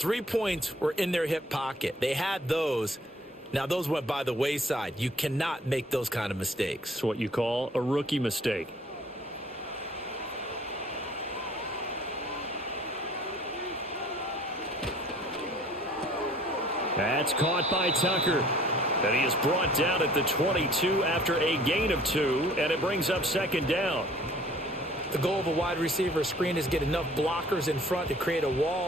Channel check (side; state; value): both; normal; correlation 0.54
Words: points were in their hip pocket. They had those. Now, those went by the wayside. You cannot make those kind of mistakes. It's what you call a rookie mistake. That's caught by Tucker. And he is brought down at the 22 after a gain of 2, and it brings up second down. The goal of a wide receiver screen is get enough blockers in front to create a